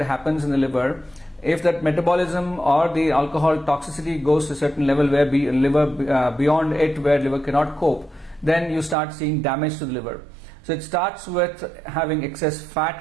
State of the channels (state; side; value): drops out; left; at 9.0 s